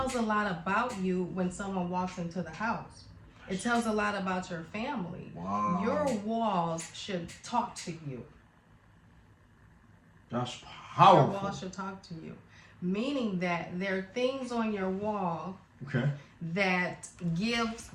a lot about you when someone walks into the house. It tells a lot about your family. Wow. Your walls should talk to you. That's Your powerful. walls should talk to you. Meaning that there are things on your wall Okay. that gives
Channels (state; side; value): identical; both; correlation 1.00